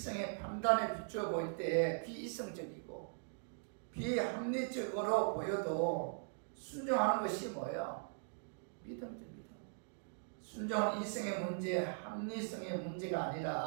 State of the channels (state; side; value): silent; left; digital silence